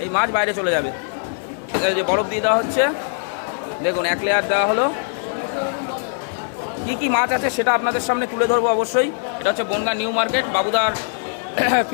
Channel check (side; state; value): right; silent; 64 dB below the other